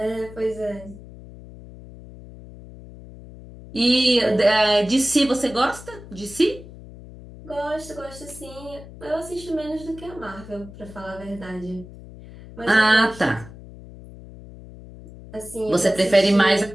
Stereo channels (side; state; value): left; noise; hum, 17 dB below the sound